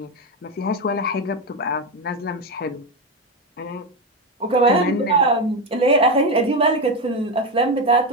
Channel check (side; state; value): both; normal; correlation 0.13